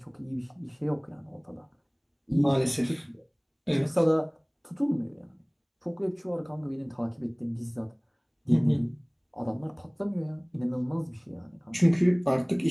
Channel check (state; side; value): identical; both; correlation 1.00